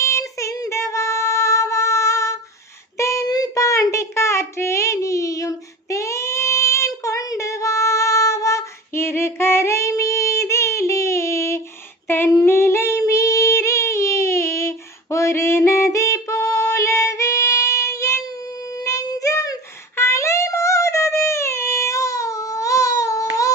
சிந்தவாவா, தென்பாண்டி காற்றே நீயும் தேன் கொண்டு வாவா. இரு கரை மீதிலே தன்னிலை மீறியே ஒரு நதி போலவே என் நெஞ்சம் அலைமோதுதே.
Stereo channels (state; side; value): normal; both; correlation 0.35